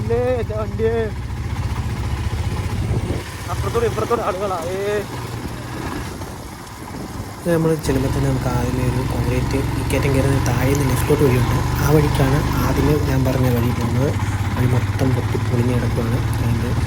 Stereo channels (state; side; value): identical; both; correlation 1.00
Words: നമ്മൾ ചെല്ലുമ്പോൾ തന്നെ നമുക്ക് ആദ്യമേ ഒരു കോൺക്രീറ്റ് കയറ്റം കയറുന്ന താഴെ നിന്ന് ലെഫ്റ്റിലോട്ട് വഴിയുണ്ട്. ആ വഴിക്കാണ് ആദ്യമേ ഞാൻ പറഞ്ഞ വഴി പോകുന്നത്. വഴി മൊത്തം പൊട്ടിപ്പൊളിഞ്ഞ് കിടക്കുകയാണ്. അതുകൊണ്ട്